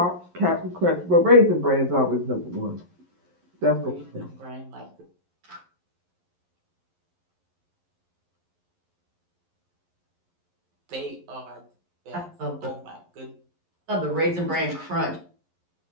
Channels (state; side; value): late; left; 11 ms